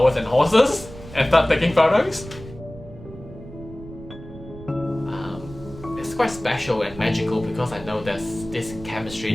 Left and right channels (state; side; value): noise; right; rumble, 15 dB below the sound